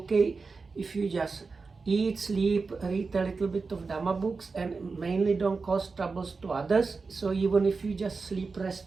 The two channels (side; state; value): left; quieter; 4.4 dB